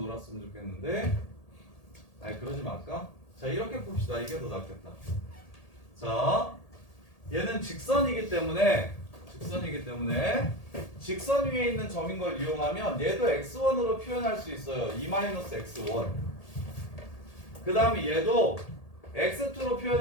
좋겠는데 아니 그러지 말까? 자 이렇게 봅시다. 이게 더 낫겠다. 자 얘는 직선이기 때문에 직선 위에 있는 점인 걸 이용하면 얘도 x1으로 표현할 수 있어요. 2-x1 그 다음에 얘도 x2로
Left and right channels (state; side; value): late; right; 1.8 ms